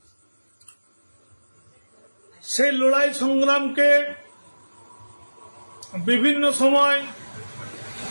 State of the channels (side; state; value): both; inverted; correlation -1.00